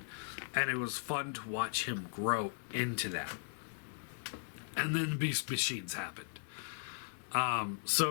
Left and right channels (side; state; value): right; silent; 53 dB below the other